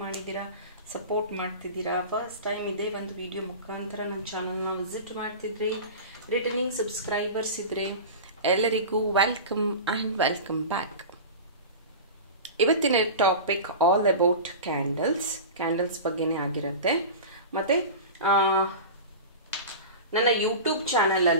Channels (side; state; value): both; inverted; correlation -0.31